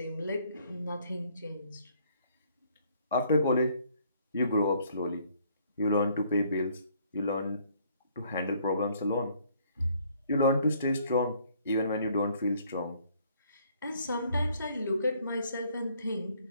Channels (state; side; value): inverted; both; correlation -0.64